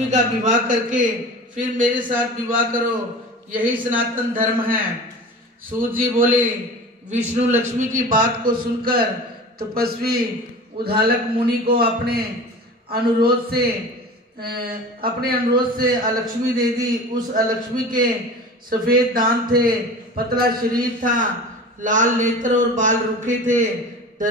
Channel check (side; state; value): both; normal; correlation 0.36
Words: का विवाह करके फिर मेरे साथ विवाह करो, यही सनातन धर्म है। सूत जी बोले, विष्णु लक्ष्मी की बात को सुनकर तपस्वी उद्दालक मुनि को अपने अनुरोध से अलक्ष्मी दे दी। उस अलक्ष्मी के सफेद दांत थे, पतला शरीर था, लाल नेत्र और बाल रूखे थे।